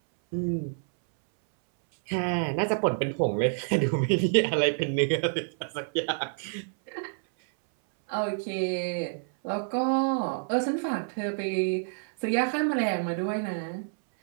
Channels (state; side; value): silent; left; 59 dB below the other